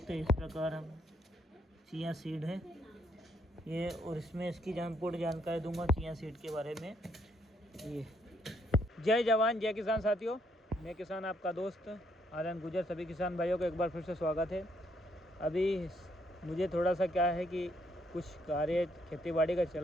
हैं इस प्रकार हम चिया सीड है ये। और इसमें इसकी पूर्ण जानकारी दूंगा चिया सीड के बारे में ये। जय जवान जय किसान साथियों, मैं किसान आपका दोस्त आनंद गुजर। सभी किसान भाइयों को एक बार फिर से स्वागत है। अभी मुझे थोड़ा सा क्या है कि कुछ कार्य खेती बाड़ी का चल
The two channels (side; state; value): both; normal; correlation 0.72